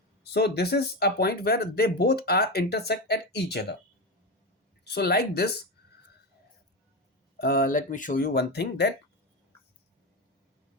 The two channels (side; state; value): both; normal; correlation 0.16